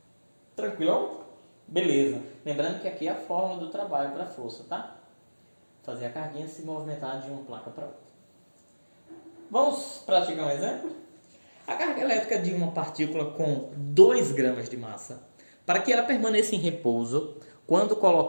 Tranquilão? Beleza. Lembrando que aqui é a fórmula do trabalho para a força, tá? Fazer a carguinha se movimentar de uma placa para outra. Vamos praticar um exemplo? A carga elétrica de uma partícula com 2 gramas de massa, para que ela permaneça em repouso, quando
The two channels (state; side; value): inverted; both; correlation -1.00